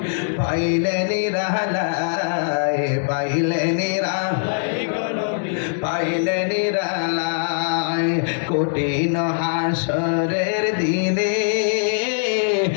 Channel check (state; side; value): silent; right; 64 dB below the other